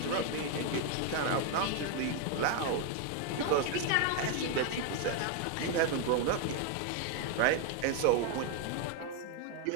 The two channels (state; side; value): different; both; correlation 0.01